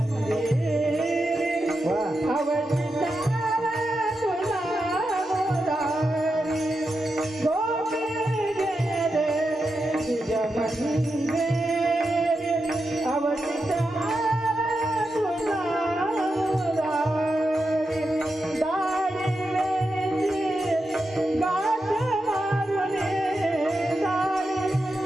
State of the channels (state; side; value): normal; both; correlation 0.88